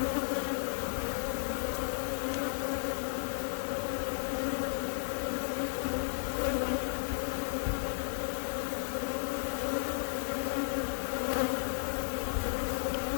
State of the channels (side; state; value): right; silent; 55 dB below the other